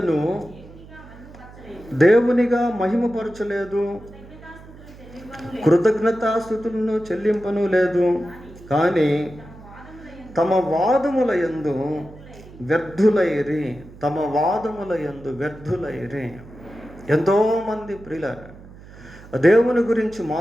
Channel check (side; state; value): right; noise; hum, 19 dB below the sound